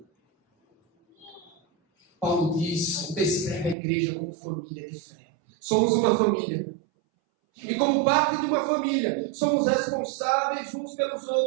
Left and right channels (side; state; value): left; drops out; at 3.8 s